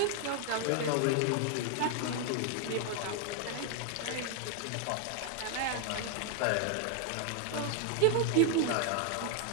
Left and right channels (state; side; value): different; both; correlation 0.01